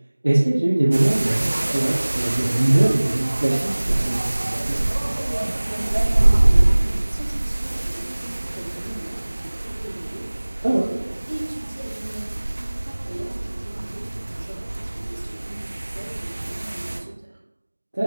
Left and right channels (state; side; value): inverted; both; correlation -1.00